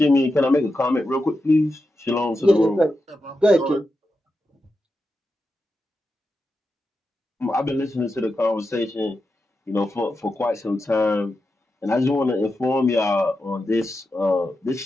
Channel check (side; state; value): both; normal; correlation 0.89